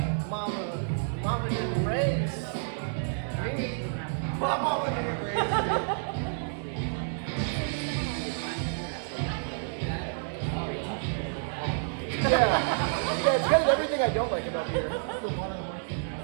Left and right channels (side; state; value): left; silent; 58 dB below the other